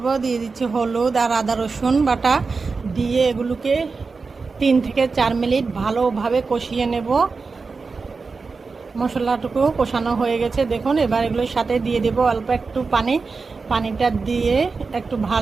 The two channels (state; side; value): quieter; left; 4.5 dB